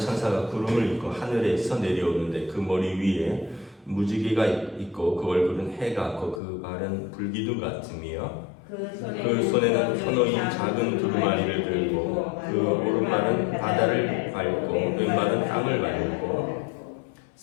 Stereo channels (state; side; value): drops out; right; at 6.4 s